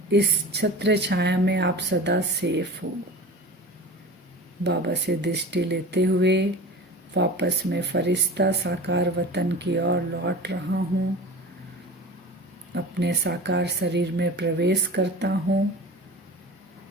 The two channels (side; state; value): both; normal; correlation 0.35